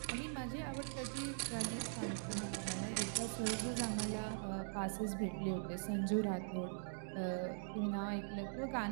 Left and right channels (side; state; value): left; silent; digital silence